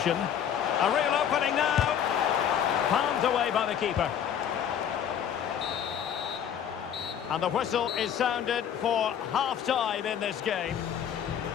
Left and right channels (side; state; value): right; quieter; 9.0 dB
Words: A real opening now. Palmed away by the keeper. And the whistle is sounded for half-time in this game.